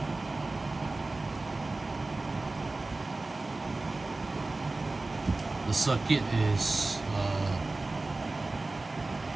the circuit is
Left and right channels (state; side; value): quieter; left; 3.2 dB